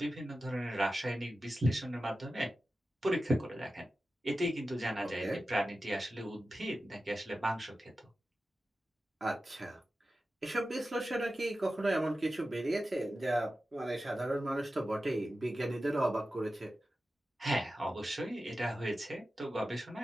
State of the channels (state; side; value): normal; both; correlation 0.93